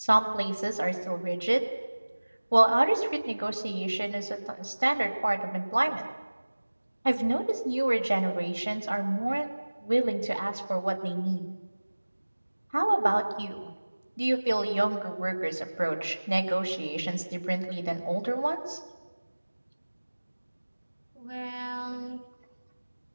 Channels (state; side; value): inverted; both; correlation -1.00